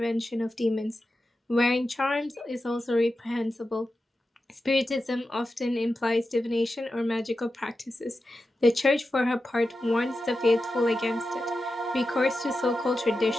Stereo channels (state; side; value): normal; both; correlation 0.91